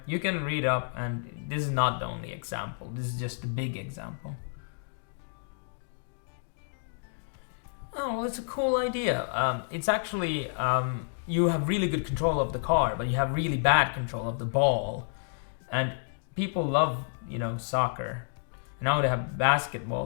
you can read up, and this is not the only example. This is just a big example. Oh, well, it's a cool idea. It's actually, you have really good control of the car, but you have really bad control of the ball. And people love, soccer. Now they have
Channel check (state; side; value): silent; right; digital silence